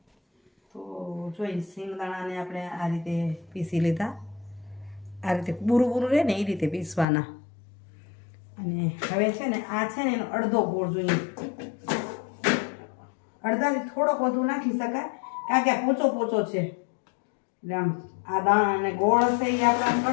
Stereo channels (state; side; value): drops out; right; at 7.1 s